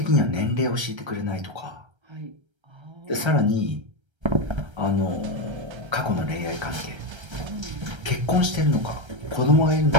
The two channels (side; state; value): left; late; 1.3 ms